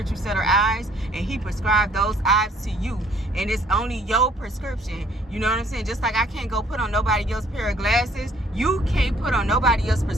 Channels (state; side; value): normal; both; correlation 0.62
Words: set of eyes and he prescribed those eyes to you. And it's only your prescription. You know what I'm saying? Just like I can't go put on nobody else's pair of glasses, you can't put on nobody else's